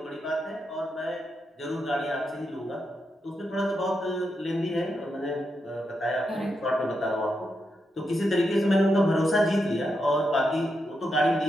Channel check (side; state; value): both; normal; correlation 0.84